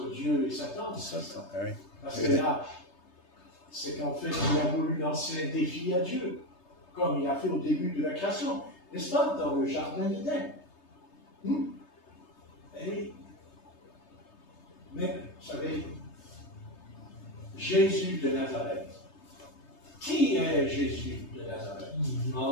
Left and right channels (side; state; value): right; late; 3.3 ms